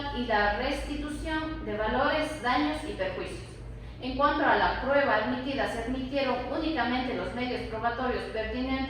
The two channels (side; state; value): both; identical; correlation 1.00